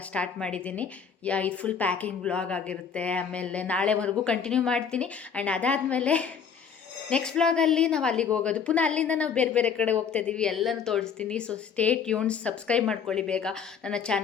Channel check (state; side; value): quieter; right; 6.8 dB